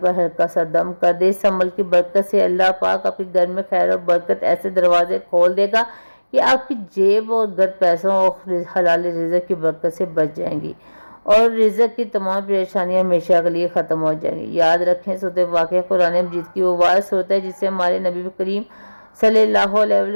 ہلکا سا دم کر دے۔ اس عمل کی برکت سے اللہ پاک آپ کے گھر میں خیر اور برکت ایسے دروازے کھول دے گا کہ آپ کی جیب اور گھر پیسوں اور حلال رزق کی برکت سے بچ جائیں گی، اور رزق کی تمام پریشانیاں ہمیشہ کے لیے ختم ہو جائیں گی۔ یاد رکھیں، سورۃ واقعہ قرآن مجید کی وہ واحد سورت ہے جسے ہمارے نبی کریم صلی اللہ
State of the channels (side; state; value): both; inverted; correlation -1.00